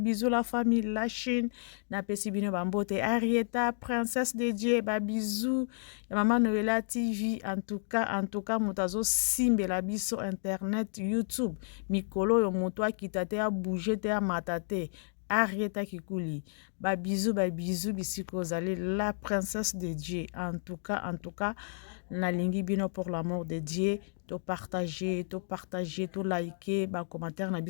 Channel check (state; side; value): silent; right; digital silence